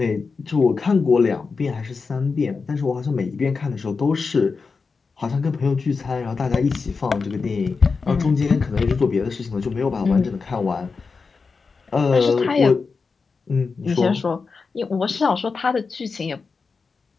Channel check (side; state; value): right; quieter; 4.7 dB